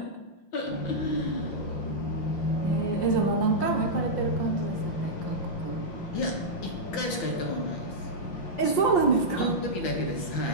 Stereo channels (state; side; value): late; right; 6.0 ms